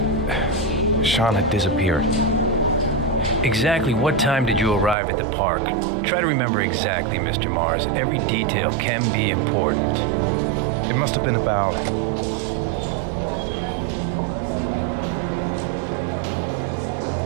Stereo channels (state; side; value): drops out; left; at 5.0 s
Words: Sean had disappeared. Exactly what time did you arrive at the park? Try to remember exactly, Mr. Mars. Every detail can be important. It must have been about